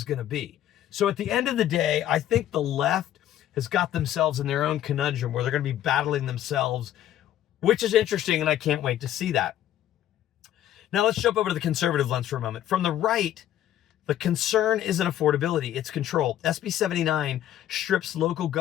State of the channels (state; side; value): quieter; right; 11.9 dB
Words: going to be? So at the end of the day, I think the left has got themselves in their own conundrum where they're going to be battling themselves, which is interesting, and I can't wait to see that. Now let's jump over to the conservative lens for a moment. From the right, the concern isn't affordability, it's control. SB 79 strips local